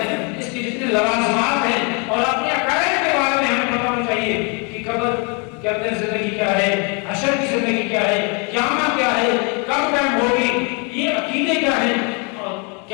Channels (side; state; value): right; quieter; 33.9 dB